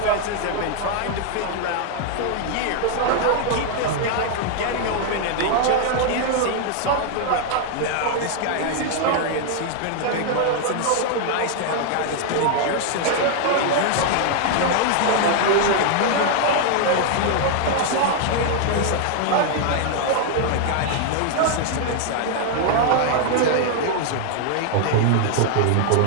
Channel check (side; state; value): both; different; correlation 0.00